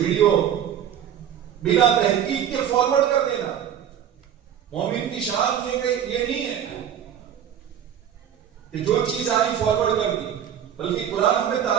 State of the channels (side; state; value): left; quieter; 9.4 dB